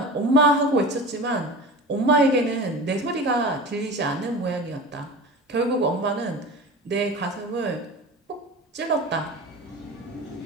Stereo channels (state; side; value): normal; both; correlation 0.34